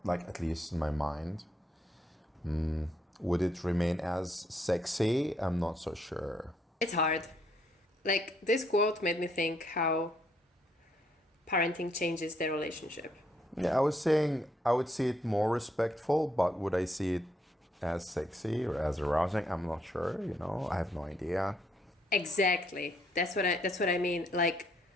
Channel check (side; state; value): both; normal; correlation 0.72